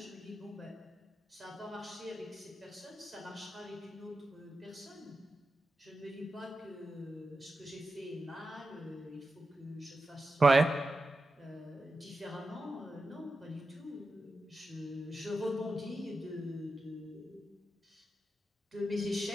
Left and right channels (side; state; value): both; normal; correlation 0.91